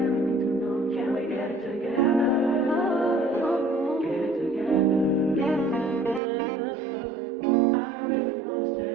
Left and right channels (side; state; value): left; drops out; at 6.2 s